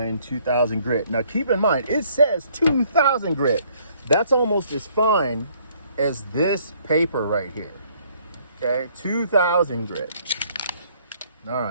2000 grit. Now keep in mind, it says 2000 grit. That's almost as fine as this paper right here. Okay, 2000 grit. All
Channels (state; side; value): inverted; both; correlation -0.63